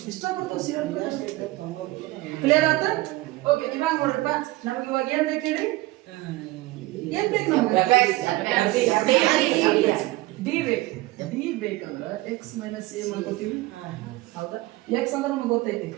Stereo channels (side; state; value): left; quieter; 19.3 dB